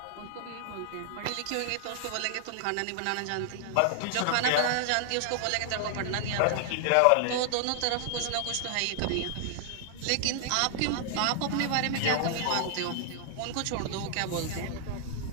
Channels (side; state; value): both; different; correlation -0.01